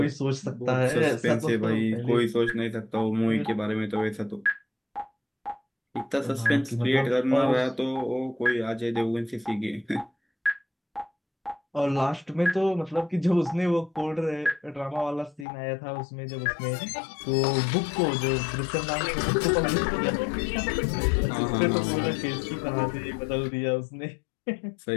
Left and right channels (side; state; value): right; drops out; at 15.5 s